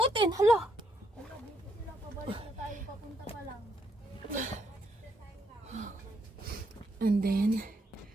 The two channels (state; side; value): normal; both; correlation 0.75